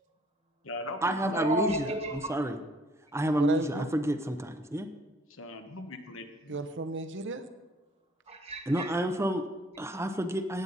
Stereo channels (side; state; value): both; normal; correlation 0.59